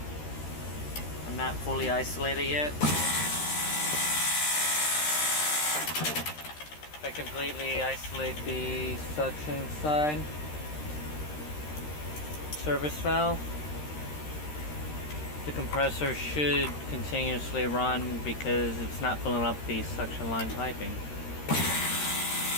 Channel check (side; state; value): right; late; 13 ms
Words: I'm not fully isolated yet. If I completely isolate the suction side service valve, the compressor should continuously run because it's not filling up the suction line piping.